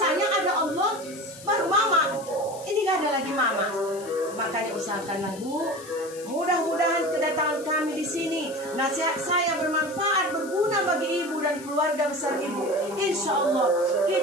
ada Allah, baru mama. Ini gak ada lagi mama. Makanya usahakanlah Bu. Mudah-mudahan kedatangan kami di sini, nasihat saya bermanfaat, berguna bagi ibu dan keluarga besar ibu. Insya Allah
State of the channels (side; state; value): left; noise; hiss, 18 dB below the sound